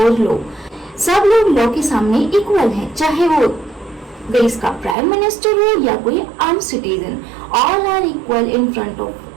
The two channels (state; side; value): drops out; left; at 5.0 s